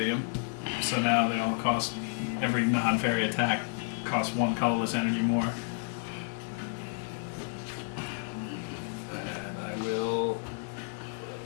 So now they all cost, every non-fairy attack costs 1 colorless energy more. And I will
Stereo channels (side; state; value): right; silent; 57 dB below the other